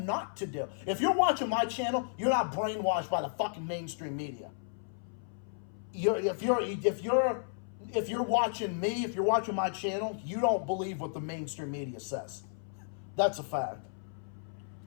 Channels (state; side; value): silent; right; 56 dB below the other